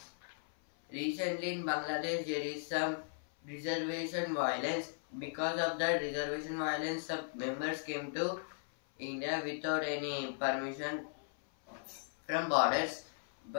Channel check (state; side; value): silent; right; 53 dB below the other